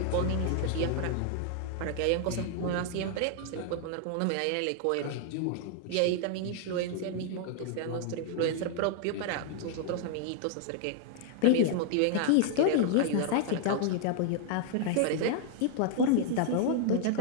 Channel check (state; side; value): different; both; correlation 0.00